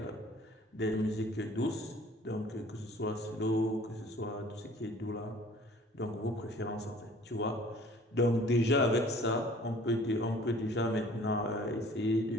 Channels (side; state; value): both; normal; correlation 0.51